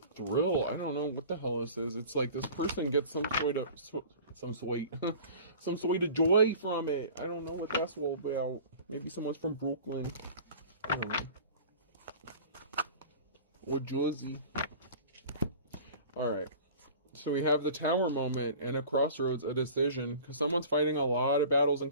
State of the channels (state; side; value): inverted; both; correlation -0.41